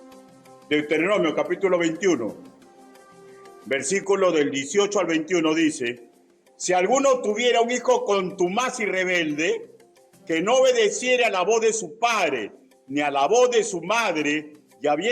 Deuteronomio capítulo 21, versículo del 18 al 21 dice: si alguno tuviera un hijo contumaz y rebelde, que no obedeciera a la voz de su padre, ni a la voz de su madre, y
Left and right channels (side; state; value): both; identical; correlation 1.00